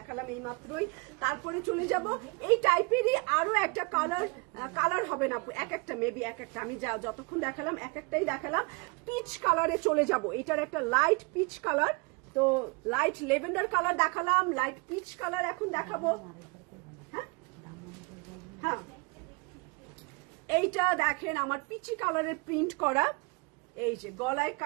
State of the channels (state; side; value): quieter; left; 29.7 dB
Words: এই মাত্রই। তারপরে চলে যাব এই টাইপেরই আরো একটা কালার হবে না, এক একটা মেবি এক একটা, আমি যতক্ষণ দেখালাম এক একটাই দেখালাম। পিচ কালারে চলে যাব, এটার একটা লাইট পিচ কালার। তো লাইট লেভেন্ডার কালার দেখালাম, লাইট পিচ কালার এখন দেখাবো। হ্যাঁ হ্যাঁ, এইটা দেখেন আমার পিচি কালারের প্রিন্ট করা, এই যে গলায়